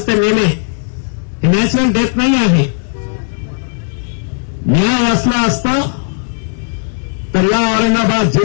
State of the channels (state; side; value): silent; right; digital silence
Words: ते मेले, हे नॅचरल डेथ नाही आहे. न्याय असला असता तर या औरंगाबाद